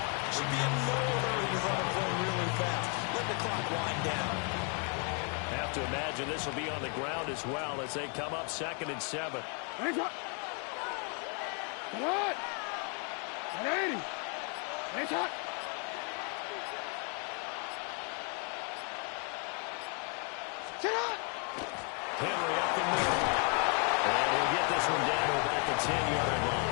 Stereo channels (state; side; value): quieter; right; 38.6 dB